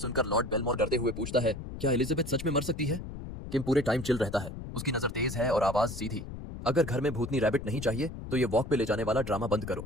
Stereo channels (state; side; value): noise; left; rumble, 9 dB below the sound